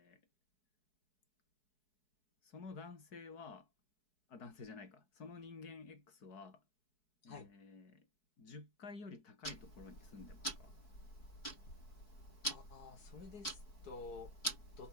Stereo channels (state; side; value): late; right; 4.7 ms